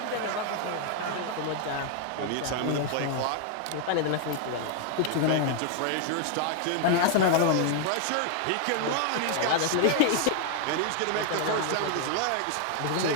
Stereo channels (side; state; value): both; different; correlation 0.00